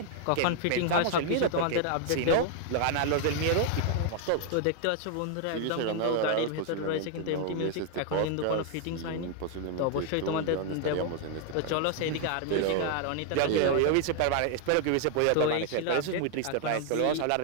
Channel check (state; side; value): different; both; correlation 0.00